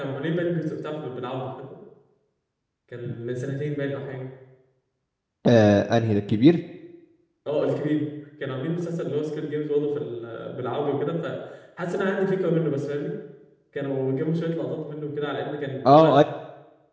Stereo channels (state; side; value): identical; both; correlation 1.00